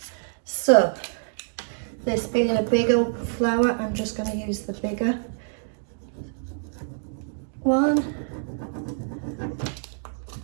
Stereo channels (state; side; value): silent; left; digital silence